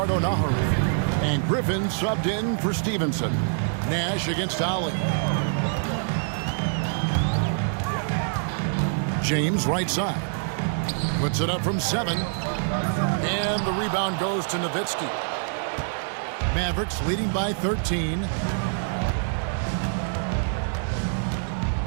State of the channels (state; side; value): silent; left; digital silence